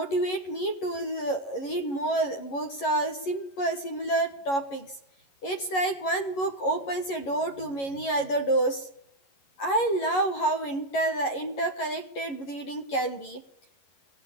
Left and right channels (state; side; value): late; right; 11 ms